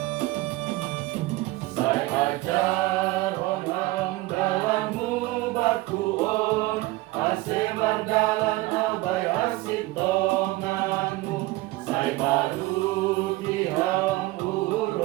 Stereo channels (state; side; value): quieter; left; 19.4 dB